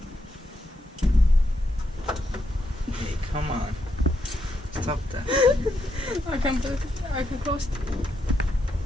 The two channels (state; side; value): normal; both; correlation 0.81